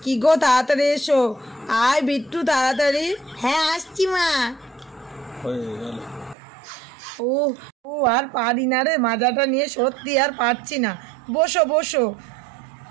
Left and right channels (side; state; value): left; drops out; at 6.4 s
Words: কি গো তাড়াতাড়ি এসো, আয় বিট্টু তাড়াতাড়ি। হ্যাঁ আসছি মা। হয়ে গেল। ও ও আর পারি না রে, মাজাটা নিয়ে সত্যি আর পারছি না। বসো বসো।